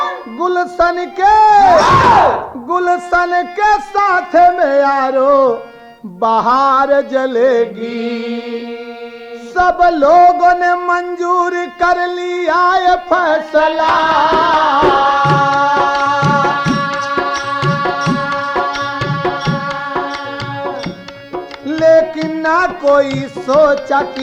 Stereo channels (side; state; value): both; identical; correlation 1.00